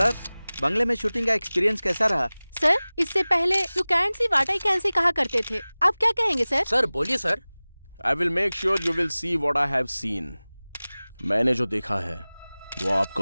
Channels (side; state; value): both; inverted; correlation -0.99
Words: बंगले में शूटिंग का एक्सपीरियंस कैसा रहा? सर, इससे पहले you can't C what I can सी कहा करते थे, आप क्या कहेंगे सर? सर बोलिए sir. I will make sure you will see what I have scene. मैंने जो देखा है वो